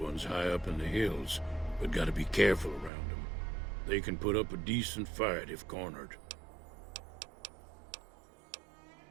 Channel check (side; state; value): left; drops out; at 2.9 s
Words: high up in the hills, but gotta be careful around them. They can put up a decent fight if cornered.